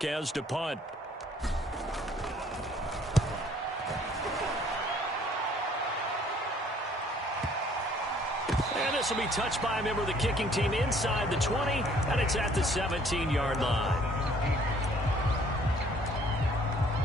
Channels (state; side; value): normal; both; correlation 0.59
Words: to punt. And this will be touched by a member of the kicking team inside the 20, and it's at the 17-yard line.